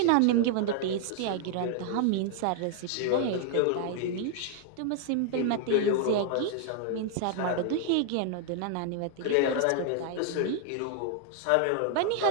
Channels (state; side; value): different; both; correlation 0.00